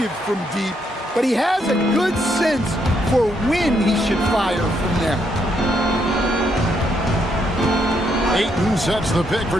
from deep, but he has a good sense for when he should fire from there. Ayton sets the pick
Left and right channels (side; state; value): both; normal; correlation 0.76